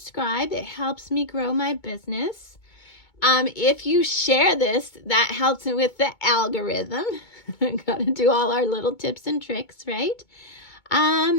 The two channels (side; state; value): right; late; 2.2 ms